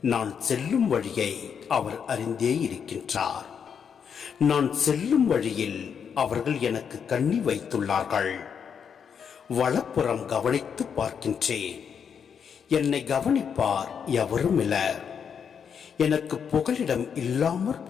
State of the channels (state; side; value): quieter; right; 7.2 dB